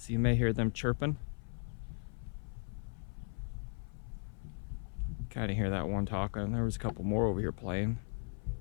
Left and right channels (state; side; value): silent; right; 53 dB below the other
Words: you may hear them chirping. Kind of hear that one talking. There was a couple more over here playing.